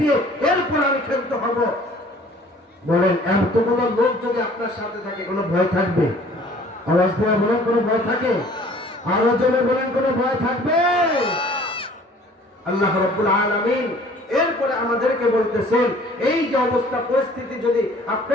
দিয়ে এরপর আমি ক্ষান্ত হব। বলেন, এতগুলো লোক যদি আপনার সাথে থাকে, কোনো ভয় থাকবে? আওয়াজ দিয়ে বলেন, কোনো ভয় থাকে? আরো জোরে বলেন, কোনো ভয় থাকবে? আল্লাহ রাব্বুল আলামিন এরপরে আমাদেরকে বলতেছেন, এই যে অবস্থা পরিস্থিতি, যদি আপনি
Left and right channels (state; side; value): normal; both; correlation 0.52